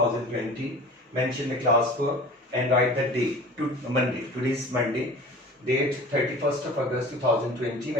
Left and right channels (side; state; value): both; normal; correlation 0.40